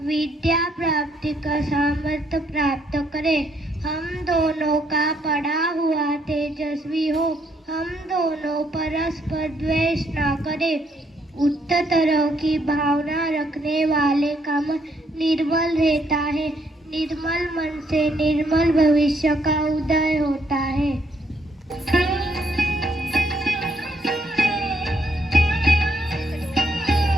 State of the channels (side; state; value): both; normal; correlation 0.71